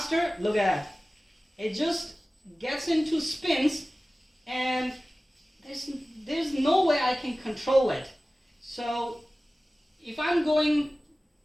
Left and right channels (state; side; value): normal; both; correlation 0.97